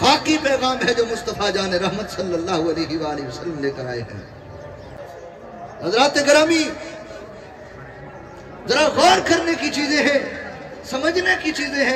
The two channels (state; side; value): identical; both; correlation 1.00